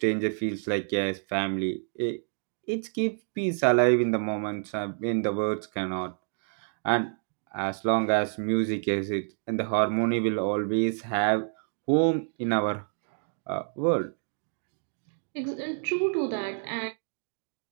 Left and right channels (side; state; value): left; silent; 57 dB below the other